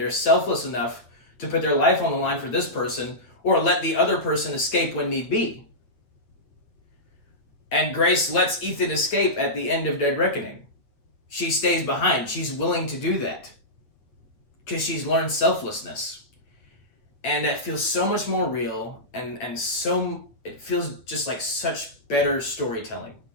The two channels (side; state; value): right; late; 8.5 ms